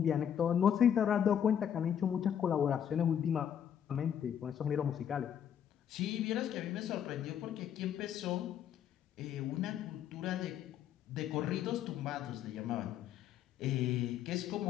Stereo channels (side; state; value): right; quieter; 9.1 dB